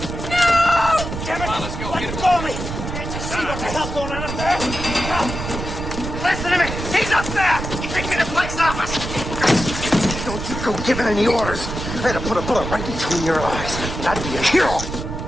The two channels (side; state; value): right; noise; rumble, 6 dB below the sound